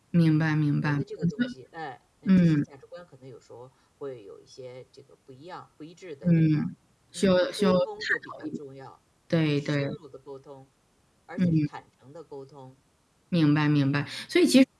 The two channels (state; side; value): identical; both; correlation 1.00